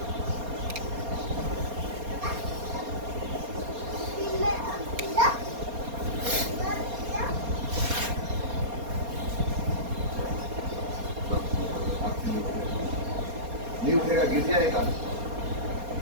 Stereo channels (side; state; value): left; late; 4.3 ms